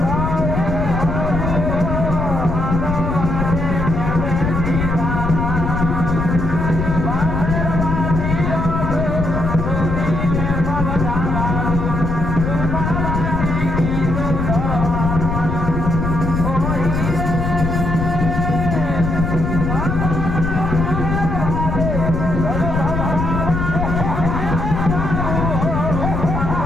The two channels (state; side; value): noise; left; rumble, 1 dB below the sound